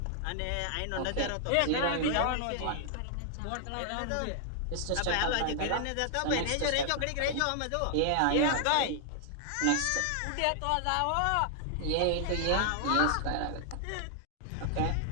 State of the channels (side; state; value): both; different; correlation 0.00